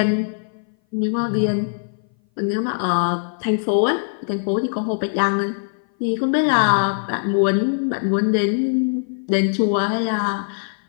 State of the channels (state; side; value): silent; right; 59 dB below the other